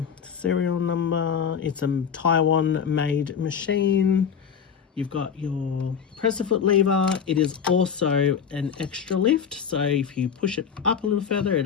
serial number. It's a Taiwan made machine. You've got your presser foot lever. It is also an extra lift, so if you push it up a little further, it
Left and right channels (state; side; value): quieter; right; 7.3 dB